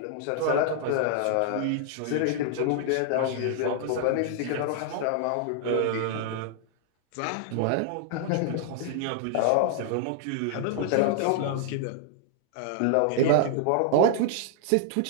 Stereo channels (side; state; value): both; different; correlation 0.00